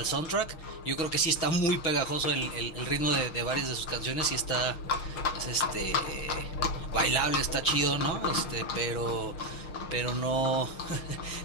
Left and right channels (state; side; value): late; right; 6.3 ms